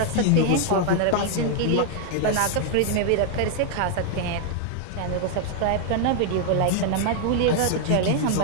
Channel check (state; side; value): different; both; correlation 0.00